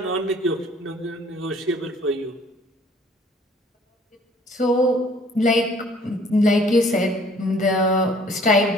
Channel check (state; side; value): normal; both; correlation 0.56